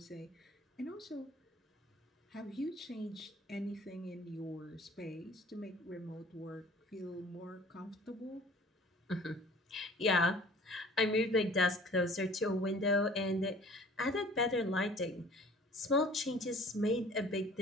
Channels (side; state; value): both; normal; correlation 0.50